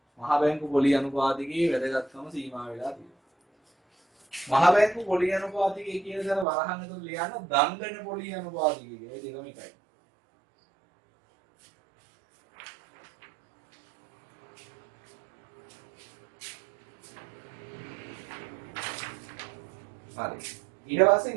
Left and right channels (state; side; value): drops out; left; at 6.5 s